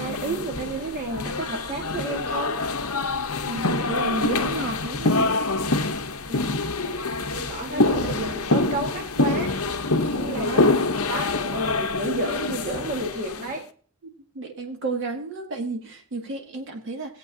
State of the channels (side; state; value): both; normal; correlation 0.00